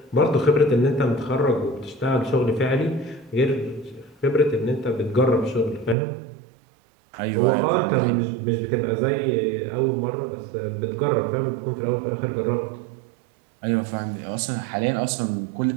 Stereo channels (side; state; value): left; drops out; at 6.0 s